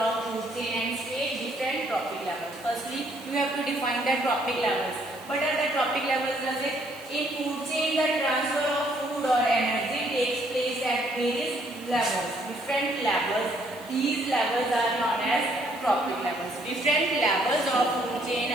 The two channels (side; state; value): right; noise; hiss, 21 dB below the sound